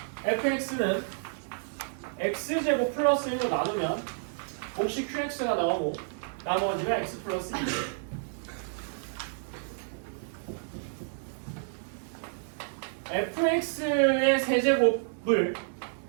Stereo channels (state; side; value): silent; left; digital silence